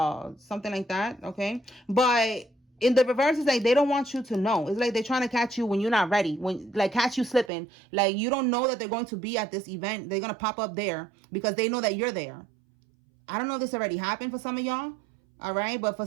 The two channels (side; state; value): left; drops out; at 7.5 s